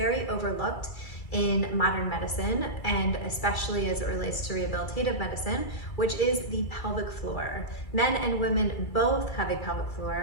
overlooked in modern medicine, and especially as it relates to rehabilitative medicine, which is the pelvic floor. Men and women both have a pelvic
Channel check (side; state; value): right; late; 2.3 ms